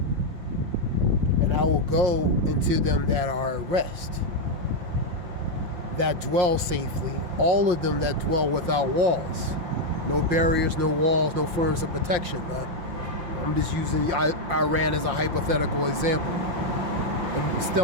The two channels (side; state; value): left; late; 5.8 ms